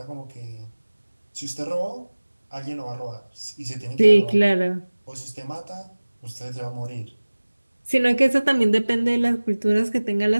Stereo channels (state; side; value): inverted; both; correlation -1.00